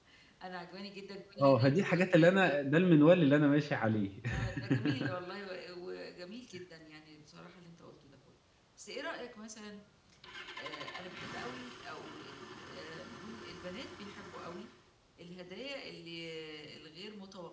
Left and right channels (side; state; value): both; identical; correlation 1.00